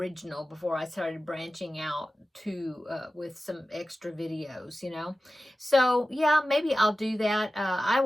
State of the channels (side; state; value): both; normal; correlation 0.95